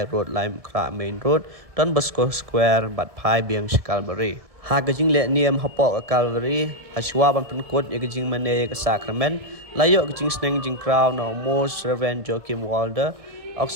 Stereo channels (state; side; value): late; left; 1.7 ms